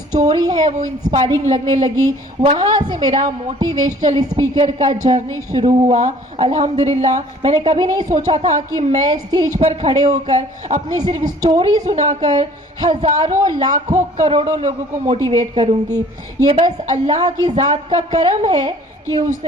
है वो इंस्पायरिंग लगने लगी। वहाँ से मेरा मोटिवेशनल स्पीकर का जर्नी शुरू हुआ। अल्हम्दुलिल्लाह, मैंने कभी नहीं सोचा था कि मैं स्टेज पर खड़े होकर अपनी सिर्फ स्टोरी सुनाकर हज़ारों, लाखों, करोड़ों लोगों को मोटिवेट करूँगी। ये बस अल्लाह की ज़ात का करम है कि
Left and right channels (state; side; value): normal; both; correlation 0.53